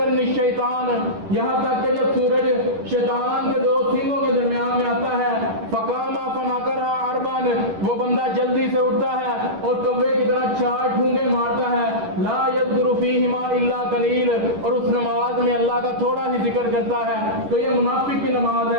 الشیطان یہاں تک کہ جب سورج شیطان کے دو سینگوں کے درمیان میں آتا ہے، فقام فناکرھا اربعا وہ بندہ جلدی سے اٹھتا ہے اور کوے کی طرح 4 ٹھونگے مارتا ہے، لا یذکر فیہما الا قلیل اور اس نماز میں اللہ کا تھوڑا ہی ذکر کرتا ہے، تو یہ منافق کی نماز ہے۔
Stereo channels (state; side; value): late; left; 10 ms